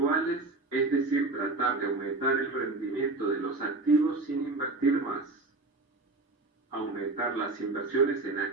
es decir, tratar de aumentar el rendimiento de los activos sin invertir más. Aumentar las inversiones en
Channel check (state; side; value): quieter; left; 3.3 dB